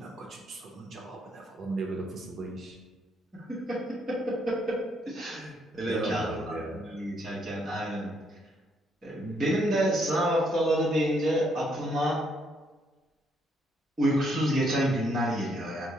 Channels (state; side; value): normal; both; correlation 0.72